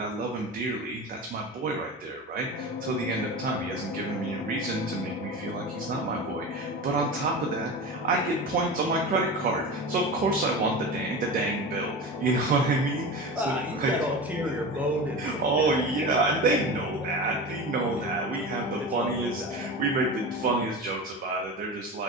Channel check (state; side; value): normal; both; correlation 0.28